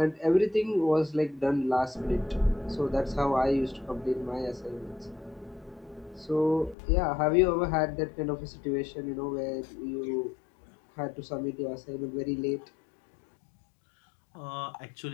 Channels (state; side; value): drops out; right; at 6.8 s